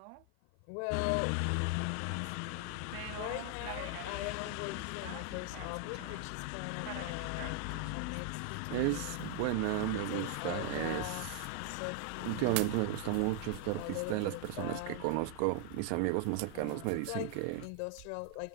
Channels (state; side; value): different; both; correlation 0.00